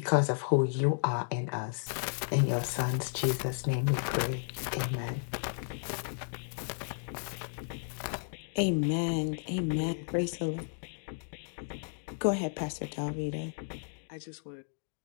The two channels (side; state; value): right; silent; digital silence